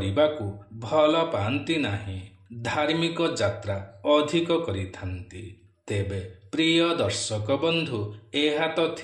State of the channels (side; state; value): both; identical; correlation 1.00